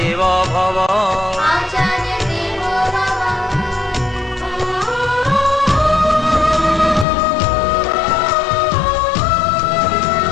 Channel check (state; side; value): drops out; right; at 7.1 s